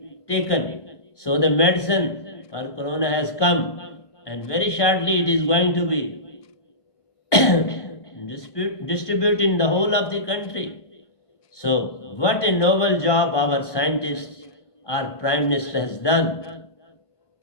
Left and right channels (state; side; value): late; right; 1.5 ms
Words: taken. So, the medicine for corona has come, and very shortly it is going to be distributed in the whole of the country. So, what a noble job our scientists, our Prime Minister has done